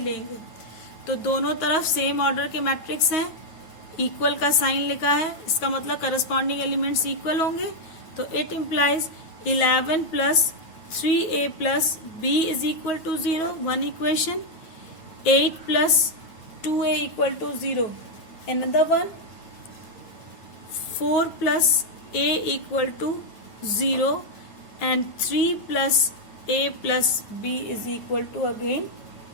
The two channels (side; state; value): right; late; 9.2 ms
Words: लेंगे। तो दोनों तरफ सेम ऑर्डर के मैट्रिक्स हैं, इक्वल का साइन लिखा है, इसका मतलब करस्पॉन्डिंग एलिमेंट्स इक्वल होंगे। तो it implies 11 plus 3a plus b is equal to 0, one equation. 8 plus 2a equal to 0, another one। 4 plus a equal to 0 and 3 plus a plus b is equal to again